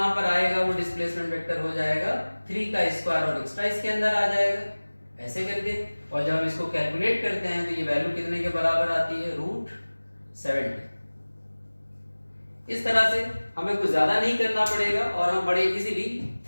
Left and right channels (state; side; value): inverted; both; correlation -1.00